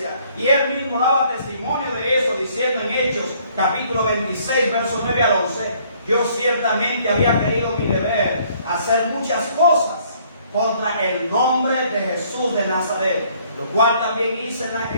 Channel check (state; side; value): inverted; both; correlation -0.62